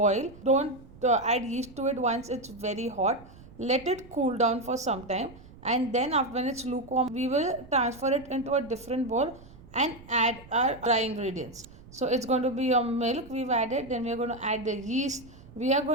Don't add yeast to it once it's very hot. Let it cool down for some time, and then after when it's lukewarm we will transfer it into a different bowl and add our dry ingredients. So it's going to be your milk we've added, then we're going to add the yeast, we are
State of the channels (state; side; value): noise; right; rumble, 20 dB below the sound